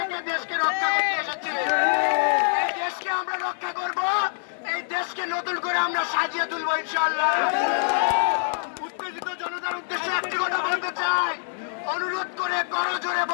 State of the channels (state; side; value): silent; right; digital silence